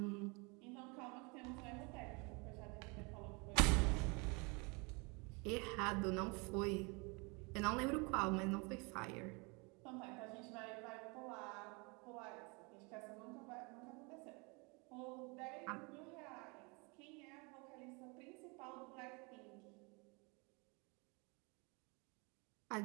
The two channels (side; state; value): left; quieter; 30.0 dB